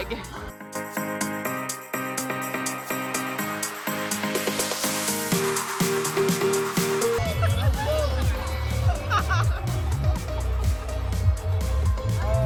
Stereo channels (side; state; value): both; identical; correlation 1.00